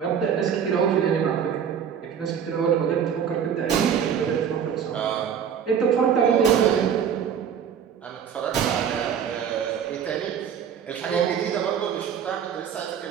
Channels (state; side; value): quieter; left; 8.0 dB